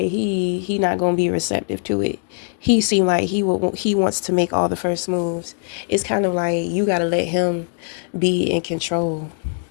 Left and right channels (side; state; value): right; silent; 56 dB below the other